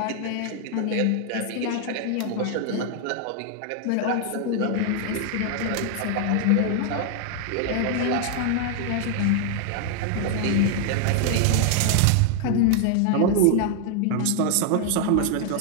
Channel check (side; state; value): both; different; correlation 0.00